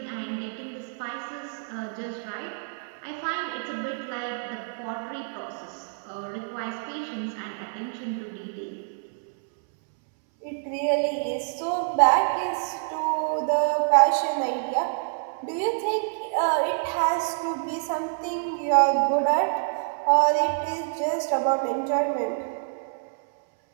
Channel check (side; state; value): left; silent; 60 dB below the other